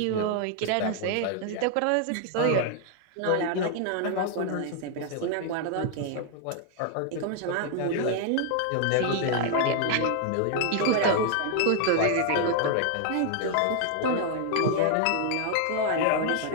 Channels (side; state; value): both; different; correlation 0.00